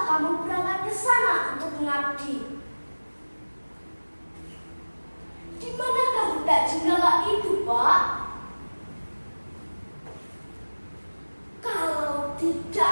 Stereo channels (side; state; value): both; inverted; correlation -1.00